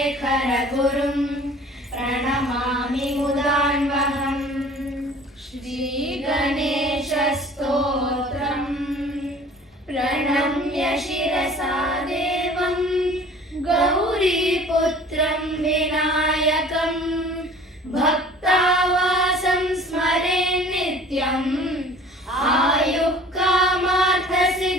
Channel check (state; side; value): normal; both; correlation 0.47